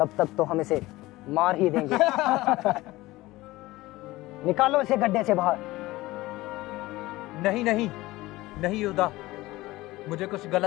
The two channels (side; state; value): right; quieter; 18.9 dB